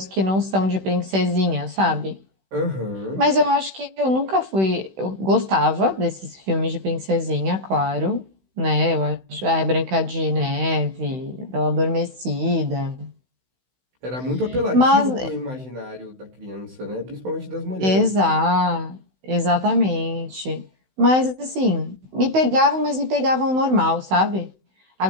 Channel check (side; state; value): left; late; 16 ms